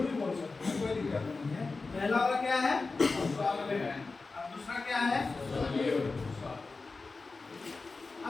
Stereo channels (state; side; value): quieter; right; 3.9 dB